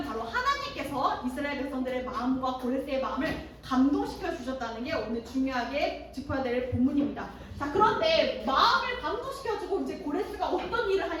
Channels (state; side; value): identical; both; correlation 1.00